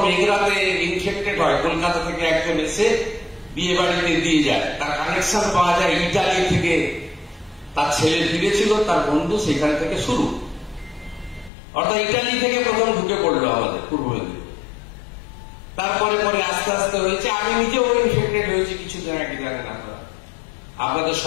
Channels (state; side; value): drops out; right; at 11.5 s